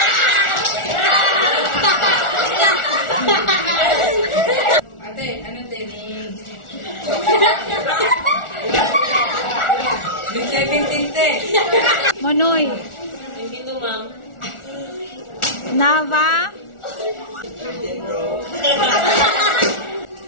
Ate, ano din? May 17 te. Monoy. Hindi to, ma'am. Nava.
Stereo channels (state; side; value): late; right; 1.4 ms